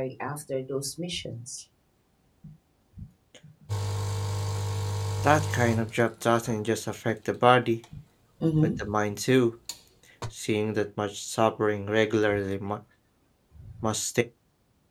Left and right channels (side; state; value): both; identical; correlation 1.00